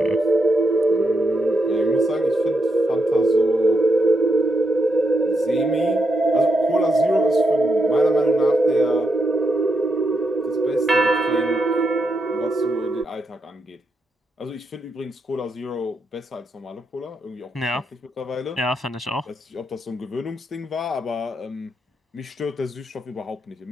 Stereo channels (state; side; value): normal; both; correlation 0.81